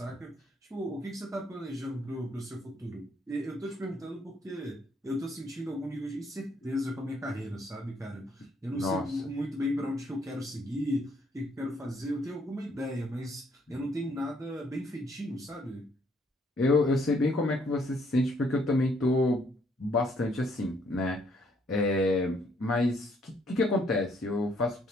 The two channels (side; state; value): both; normal; correlation 0.68